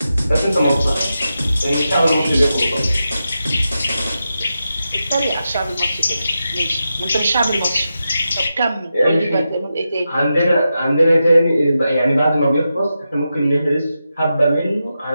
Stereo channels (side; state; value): both; inverted; correlation -0.89